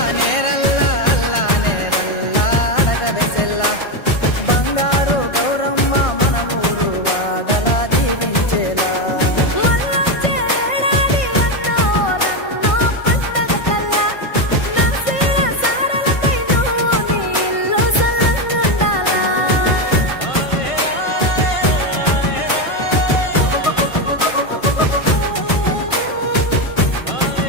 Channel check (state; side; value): late; right; 1.5 ms